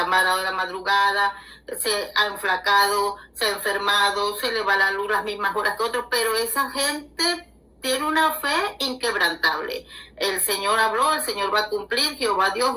amarrado de la madrugada, se ha enflacado, se ha enfermado, se le va la luz las mismas horas que otros, pero esa gente tiene una fe inquebrantable. El Señor habló, el Señor va a cumplir, Jehová Dios,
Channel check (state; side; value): identical; both; correlation 1.00